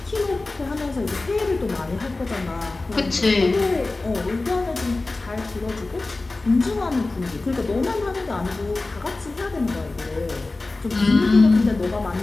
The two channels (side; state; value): right; quieter; 3.3 dB